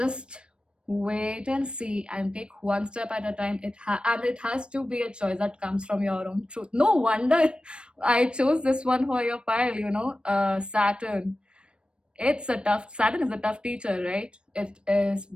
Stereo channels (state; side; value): late; left; 0.056 ms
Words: wait and see and take one step at a time. And it has to be a choice that comes from your own truth. No wonder I chose this one for your pile. Saturn. Saturn is a tough teacher, right? It is